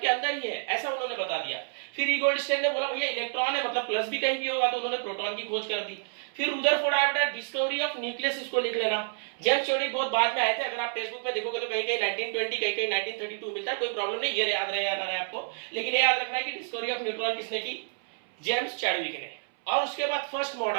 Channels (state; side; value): silent; left; 59 dB below the other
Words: के अंदर ही है, ऐसा उन्होंने बता दिया। फिर ई गोल्डस्टेन ने बोला भैया इलेक्ट्रॉन है मतलब प्लस भी कहीं भी होगा, तो उन्होंने प्रोटॉन की खोज कर दी। फिर रुदरफोर्ड आया बेटा, डिस्कवरी ऑफ न्यूक्लियस, इसको लिख लेना। जेम्स चैडविक बहुत बाद में आए थे, अगर आप टेक्स्ट बुक में देखोगे तो कहीं कहीं 1920, कहीं कहीं 1932 मिलता है, कोई प्रॉब्लम नहीं, ये याद रहे आपको। लेकिन ये याद रखना है कि डिस्कवरी ऑफ न्यूट्रॉन किसने की, जेम्स चैडविक ने। और उसके बाद फर्स्ट